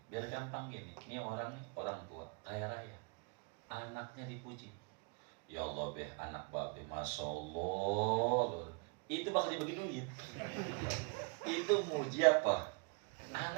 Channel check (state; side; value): quieter; left; 33.3 dB